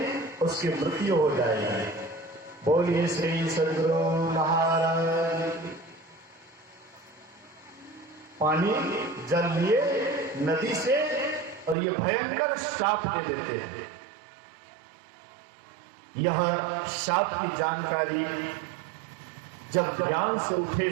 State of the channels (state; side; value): drops out; left; at 11.8 s